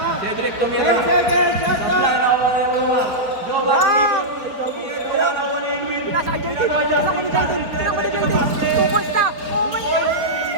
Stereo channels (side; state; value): left; late; 4.6 ms